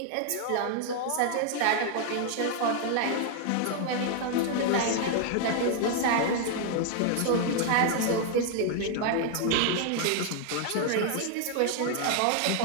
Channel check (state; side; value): different; both; correlation 0.00